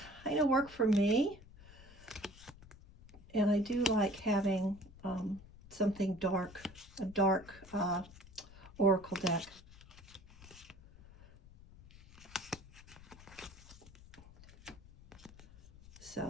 kind of work for me. And I do like having something dark, a dark oracle deck.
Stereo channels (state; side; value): noise; left; rumble, 20 dB below the sound